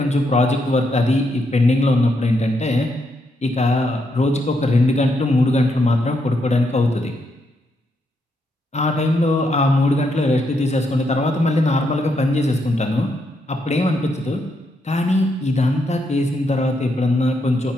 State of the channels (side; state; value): both; normal; correlation 0.79